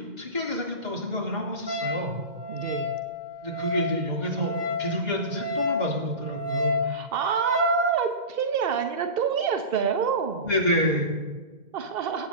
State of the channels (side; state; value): left; late; 2.1 ms